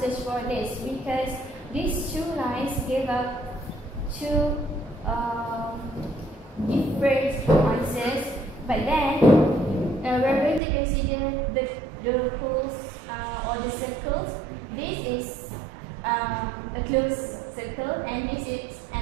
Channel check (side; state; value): left; drops out; at 10.6 s